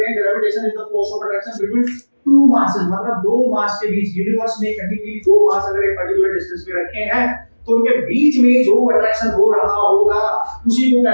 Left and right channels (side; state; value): both; inverted; correlation -1.00